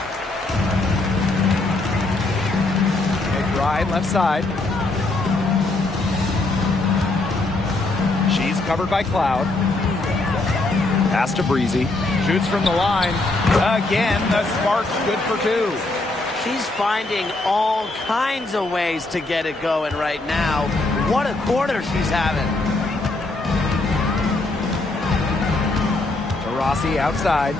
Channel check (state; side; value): quieter; right; 3.0 dB